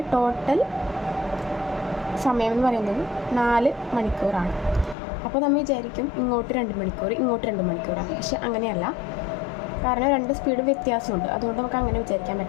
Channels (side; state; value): right; drops out; at 5.0 s